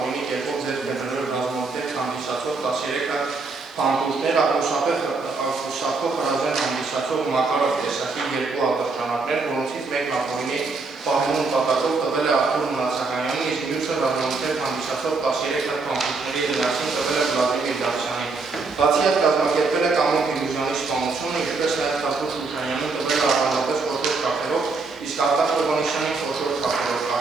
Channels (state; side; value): quieter; left; 4.0 dB